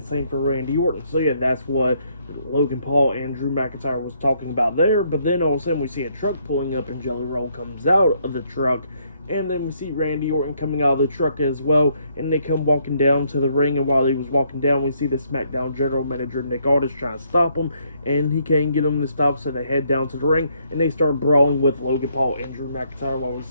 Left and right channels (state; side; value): inverted; both; correlation -0.70